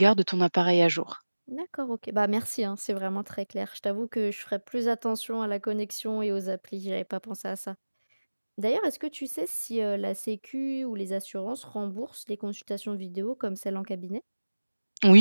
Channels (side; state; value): both; inverted; correlation -1.00